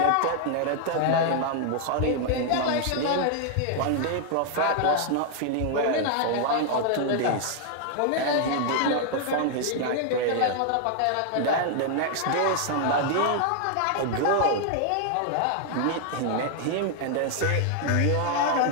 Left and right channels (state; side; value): different; both; correlation 0.00